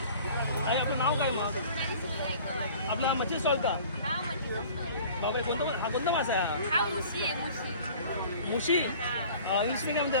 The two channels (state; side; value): inverted; both; correlation -0.47